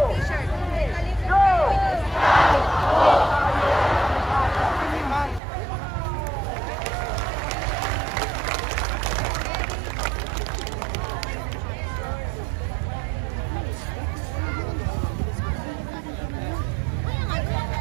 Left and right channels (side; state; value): left; drops out; at 5.4 s